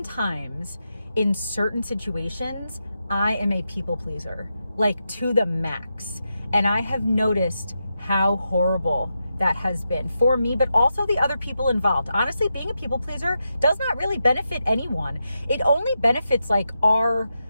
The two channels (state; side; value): inverted; both; correlation -0.87